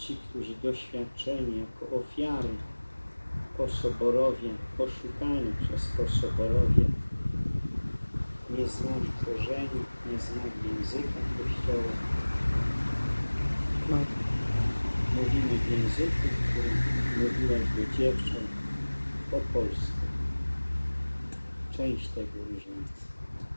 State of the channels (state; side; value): inverted; both; correlation -1.00